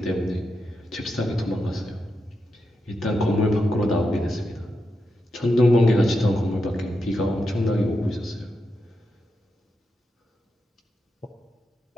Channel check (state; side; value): normal; both; correlation 0.86